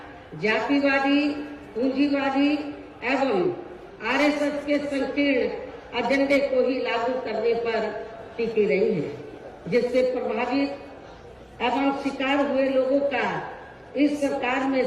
जातिवादी, पूंजीवादी एवं आरएसएस के संकीर्ण एजेंडे को ही लागू करने पर टिकी रही है। जिससे प्रभावित एवं शिकार हुए लोगों का इस सरकार में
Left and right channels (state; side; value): identical; both; correlation 1.00